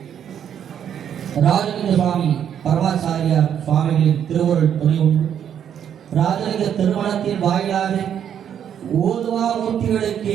ராஜலிங்க சுவாமி பரமாச்சாரியார் சுவாமிகளின் திருவருள் துணை உண்டு ராஜலிங்க திருமணத்தின் வாயிலாக ஓதுவா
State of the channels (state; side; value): quieter; left; 9.0 dB